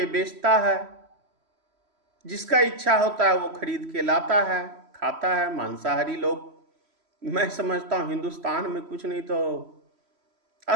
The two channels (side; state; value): left; late; 3.1 ms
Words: बेचता है, जिसका इच्छा होता है वो खरीद के लाता है, खाता है। मांसाहारी लोग मैं समझता हूं हिंदुस्तान में कुछ नहीं तो